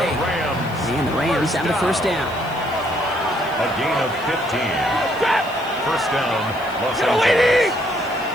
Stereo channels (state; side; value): noise; left; hiss, 23 dB below the sound